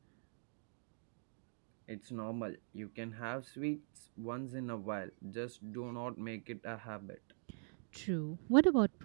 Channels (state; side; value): silent; left; digital silence